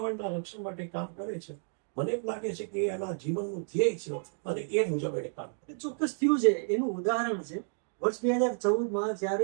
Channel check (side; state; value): left; silent; digital silence